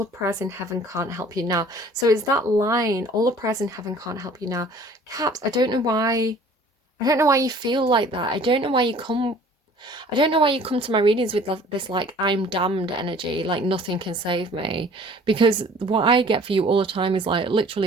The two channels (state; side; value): normal; both; correlation 0.51